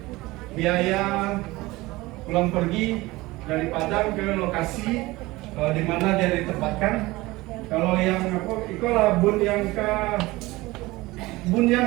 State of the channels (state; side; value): quieter; left; 20.2 dB